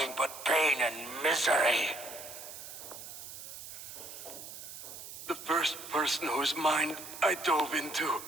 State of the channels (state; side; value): noise; right; hiss, 12 dB below the sound